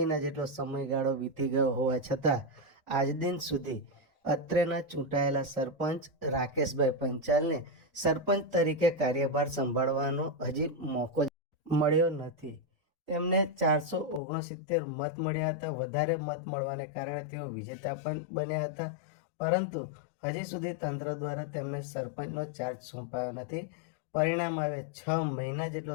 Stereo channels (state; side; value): drops out; right; at 14.2 s